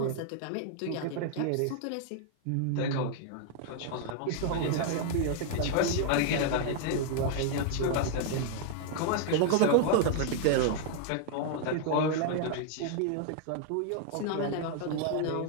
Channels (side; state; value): both; different; correlation 0.00